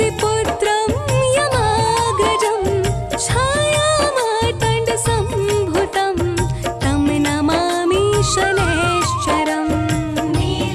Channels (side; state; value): both; identical; correlation 1.00